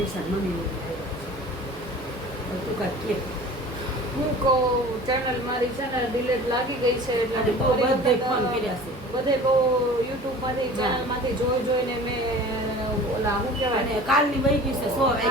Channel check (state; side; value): normal; both; correlation 0.42